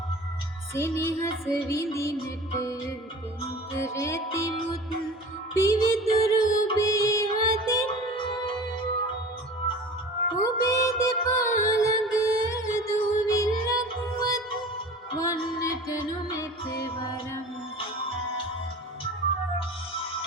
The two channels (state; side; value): normal; both; correlation 0.39